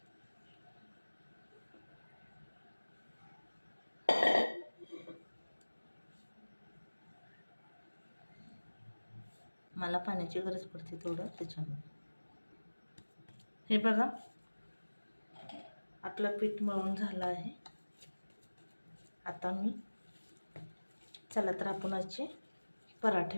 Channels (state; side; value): inverted; both; correlation -1.00